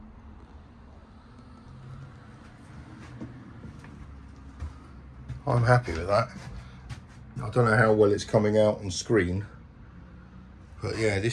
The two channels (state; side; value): identical; both; correlation 1.00